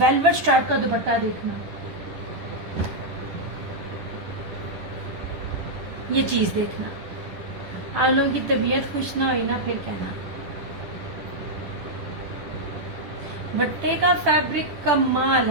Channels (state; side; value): late; left; 10 ms